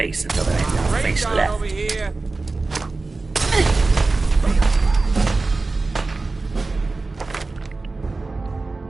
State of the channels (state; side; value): quieter; left; 3.6 dB